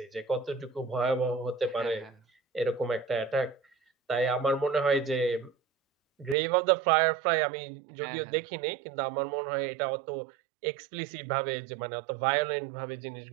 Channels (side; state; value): left; drops out; at 6.4 s